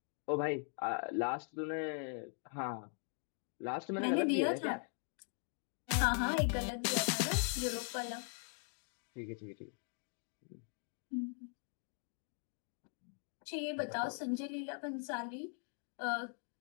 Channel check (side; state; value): right; silent; 51 dB below the other